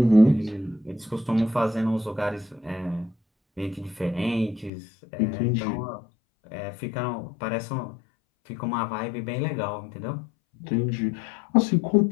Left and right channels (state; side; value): drops out; right; at 4.7 s